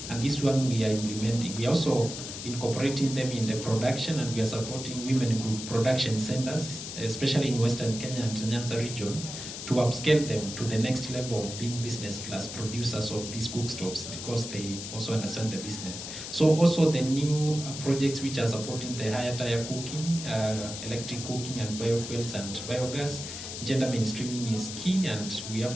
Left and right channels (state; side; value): noise; left; hiss, 8 dB below the sound